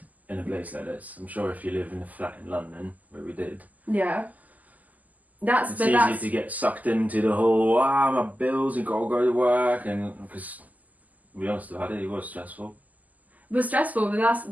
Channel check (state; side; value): late; left; 0.079 ms